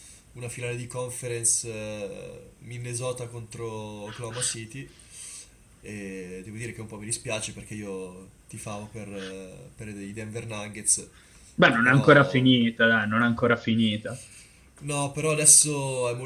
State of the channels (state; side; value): identical; both; correlation 1.00